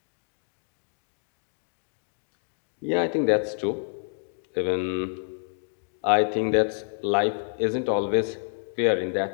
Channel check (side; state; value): right; silent; digital silence